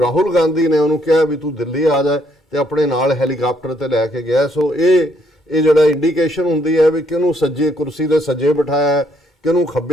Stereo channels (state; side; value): normal; both; correlation 0.70